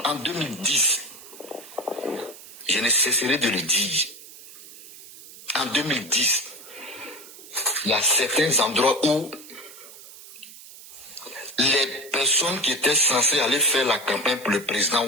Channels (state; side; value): noise; right; hiss, 17 dB below the sound